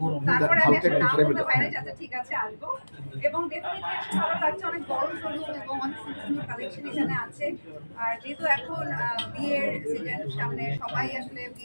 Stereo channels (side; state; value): both; inverted; correlation -1.00